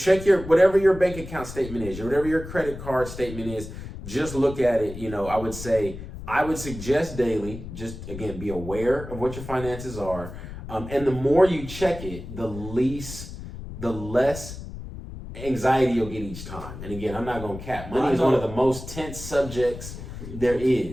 whatever your bank account statement is, or whatever your credit card statement is. Just look at it. I would suggest daily, just again, be aware of what your finances are. And the more you check it, the less anxiety you'll get each time. And again, I'm not going to cap. Money is one of the most tense subjects there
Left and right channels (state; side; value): noise; left; rumble, 11 dB below the sound